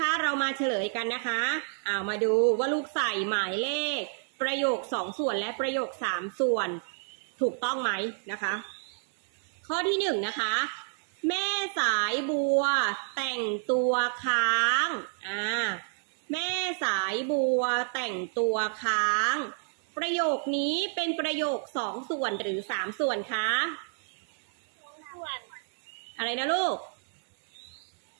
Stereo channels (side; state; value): left; silent; 58 dB below the other